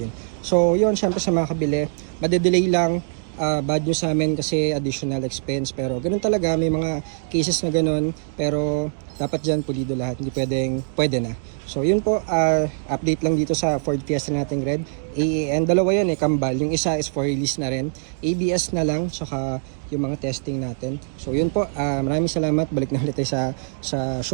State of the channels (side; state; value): left; silent; digital silence